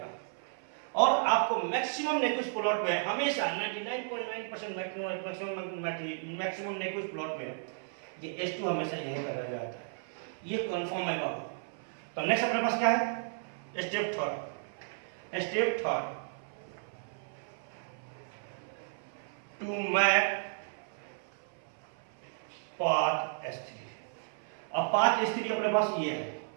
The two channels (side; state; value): left; silent; 55 dB below the other